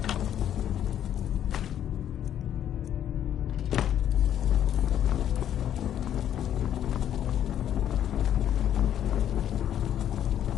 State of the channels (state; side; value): quieter; right; 10.4 dB